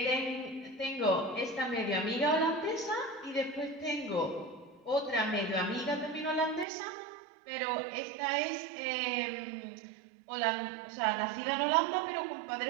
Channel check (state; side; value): drops out; left; at 6.7 s